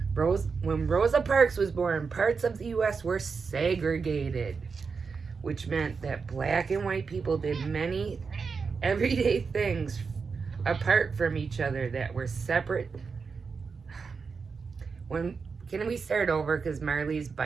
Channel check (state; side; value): quieter; left; 5.2 dB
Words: When Rosa Parks was born, parts of the U.S. were segregated, which meant that black and white people did many everyday things apart from each other that were separate. Can we start over? Because Marley's